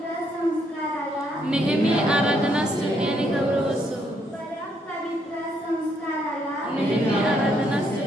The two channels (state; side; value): normal; both; correlation 0.73